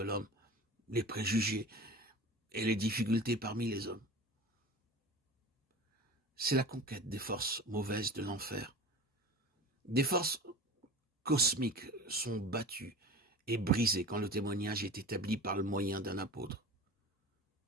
l'homme, les préjugés et les difficultés parmi les hommes. C'est la conquête des forces mauvaises de l'enfer. Des forces cosmiques sont battues et brisées quand le témoignage est établi par le moyen d'un apôtre.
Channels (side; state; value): both; normal; correlation 0.35